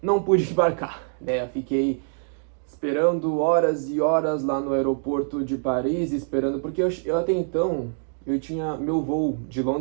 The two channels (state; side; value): silent; left; digital silence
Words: Não pude embarcar, né? Eu fiquei esperando horas e horas lá no aeroporto de Paris, esperando, porque eu até então, eu tinha meu voo de